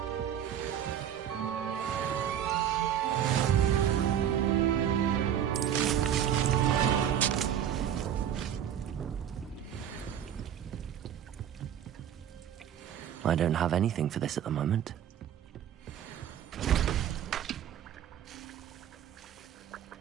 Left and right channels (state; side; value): quieter; left; 9.8 dB